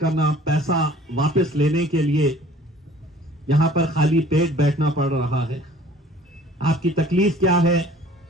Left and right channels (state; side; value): normal; both; correlation 0.51